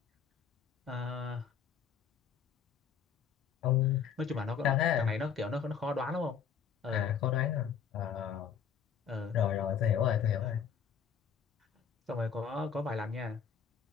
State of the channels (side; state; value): right; quieter; 7.4 dB